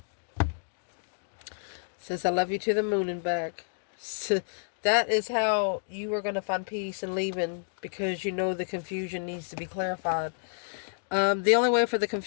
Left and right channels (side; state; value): right; silent; digital silence